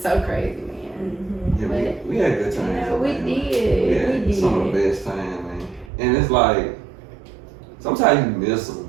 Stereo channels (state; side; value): drops out; left; at 5.9 s